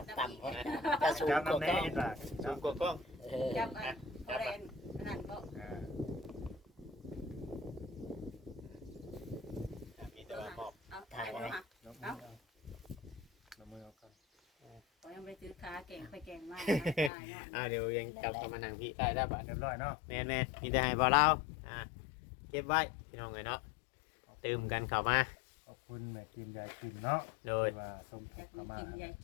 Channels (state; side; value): drops out; right; at 17.1 s